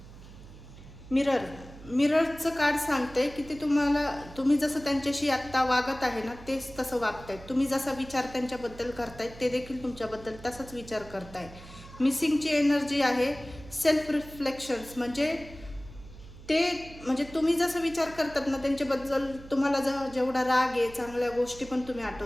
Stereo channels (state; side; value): noise; right; hum, 17 dB below the sound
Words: मिररचं कार्ड सांगते की ते तुम्ही जसं त्यांच्याशी आत्ता वागत आहे ना, तेच तसं वागतायत. तुम्ही जसा विचार त्यांच्याबद्दल करतायत ते देखील तुमच्याबद्दल तसाच विचार करताय. मिसिंगची एनर्जी आहे सेल्फ रिफ्लेक्शन्स, म्हणजे तुम्ही जसं विचार करतात ना त्यांच्याबद्दल, तुम्हाला जेवढा राग आहे, चांगल्या गोष्टी पण तुम्ही